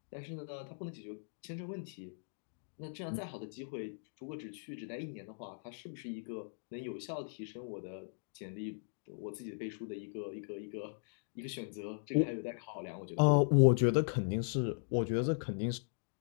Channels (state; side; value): silent; right; digital silence